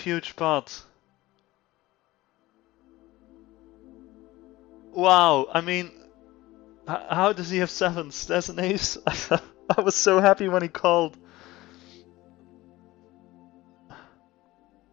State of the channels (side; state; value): right; quieter; 18.3 dB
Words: pot. Wow, I mean, how does he have sevens? There's an ace. I was so happy when he called.